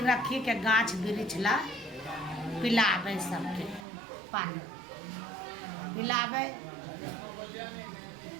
रखी के गाछ वृक्ष ला पिलावे, सबके पानी पिलावे।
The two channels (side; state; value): left; drops out; at 3.9 s